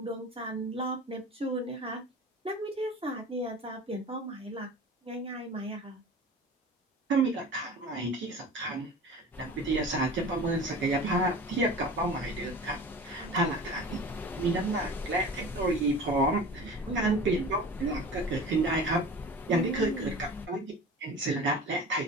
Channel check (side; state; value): both; normal; correlation 0.37